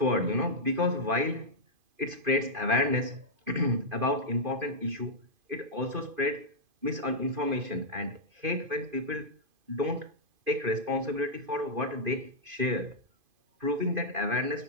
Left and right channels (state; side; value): late; left; 2.5 ms